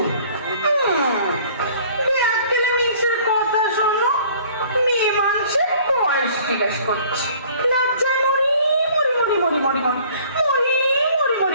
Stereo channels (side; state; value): both; inverted; correlation -0.53